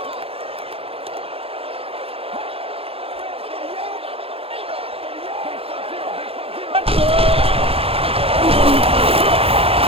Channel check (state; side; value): late; left; 0.28 ms